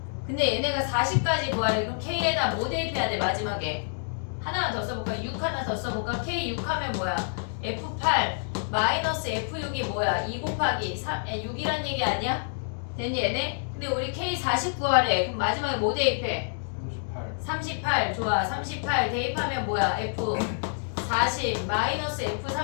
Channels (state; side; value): silent; right; digital silence